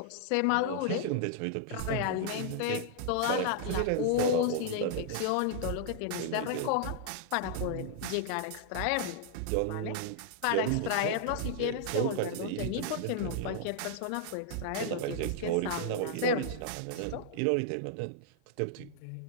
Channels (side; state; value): both; different; correlation -0.01